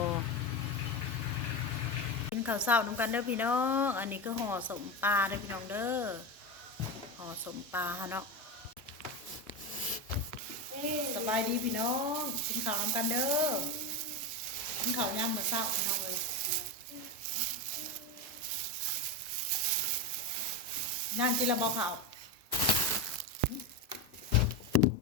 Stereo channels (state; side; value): normal; both; correlation 0.16